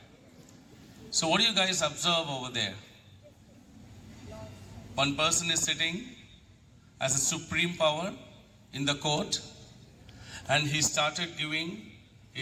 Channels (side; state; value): both; identical; correlation 1.00